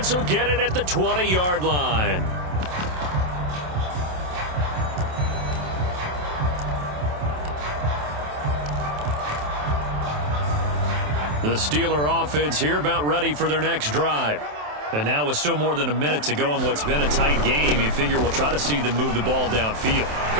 will get it at the 20-yard line. The Steeler offense here about ready for their next drive. And now with still more than a minute to go in what's been a tight game, you figure we'll try to see them move the ball downfield.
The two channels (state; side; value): late; left; 27 ms